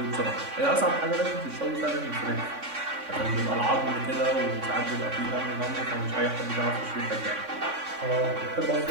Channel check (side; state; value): left; late; 3.5 ms